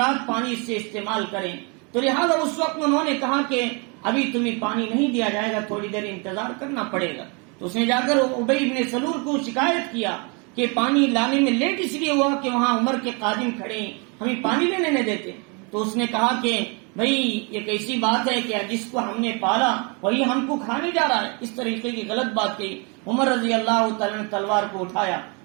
پانی سے استعمال کریں. تو لہٰذا اس وقت انہوں نے کہا کہ ابھی تمہیں پانی نہیں دیا جائے گا، تھوڑی دیر انتظار کرنا پڑے گا. تو اس نے جا کر ابی بن سلول کو شکایت کیا کہ پانی لانے میں لیٹ اس لیے ہوا کہ وہاں عمر کے قادم کھڑے ہیں، ہمیں پانی لینے نہیں دیتے. تو اس نے کہا کہ بھئی یہ کیسی بات ہے کہ جس کو ہم نے پالا وہی ہم کو کھانے جا رہا ہے. اس طریقے کی غلط بات کہی. عمر رضی اللہ تعالیٰ نے تلوار کو اٹھایا،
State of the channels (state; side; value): quieter; left; 32.7 dB